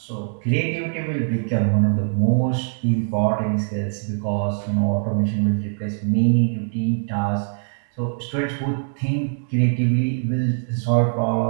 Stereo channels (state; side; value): silent; left; 64 dB below the other